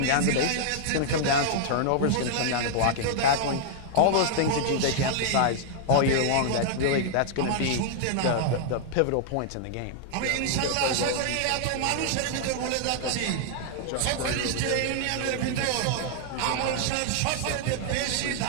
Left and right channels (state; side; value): different; both; correlation -0.01